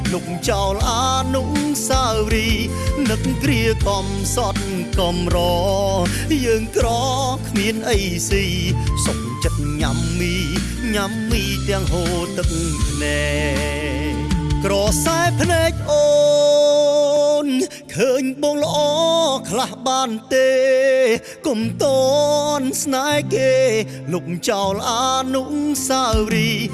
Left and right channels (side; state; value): both; identical; correlation 1.00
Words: លុកចោលអានុស្សាវរីយ៍នឹកគ្រាកំសត់កំរយើងក្រគ្មានអីស៊ីសុខចិត្តញ៉ាំមីទាំងហូរទឹកភ្នែកក្រសែភ្នែកអូនឃើញបងល្អខ្លះបានទេកុំតន់ស្នេហ៍គេលុកចោលអានុស្សាវរីយ៍